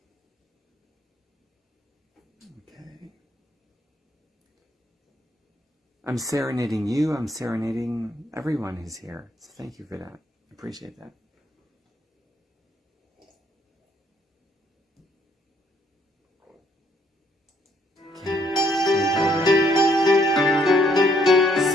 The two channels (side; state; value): both; normal; correlation 0.68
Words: Okay. I'm serenading you. I'm serenading everyone who's here. So thank you for that. I appreciate that.